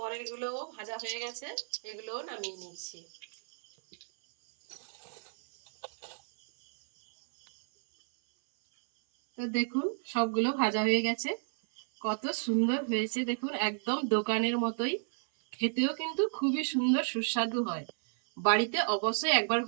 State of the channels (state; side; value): silent; left; 57 dB below the other